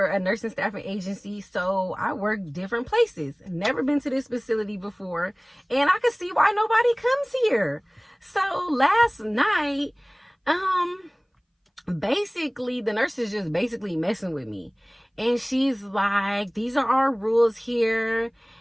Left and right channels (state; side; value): identical; both; correlation 1.00